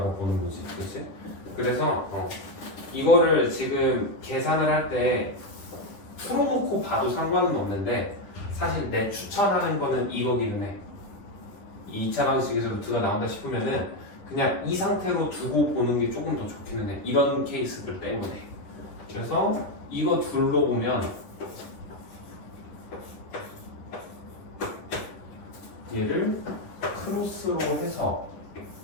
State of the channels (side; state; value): right; late; 10 ms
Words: 보는 거지, 그렇지? 그래서 이거를 지금 계산을 할 때 풀어놓고 봐도 상관은 없는데 사실 내 추천하는 거는 이거기는 해. 이 2차 방식에서 루트가 나온다 싶으면은 그냥 이 상태로 두고 보는 게 조금 더 좋기는 해. 이런 케이스들 때문에. 그래서 이거 둘로 보면 얘를 크로스로 해서